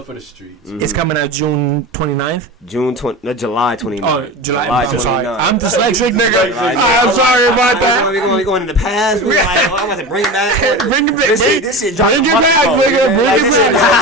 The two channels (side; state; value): both; normal; correlation 0.28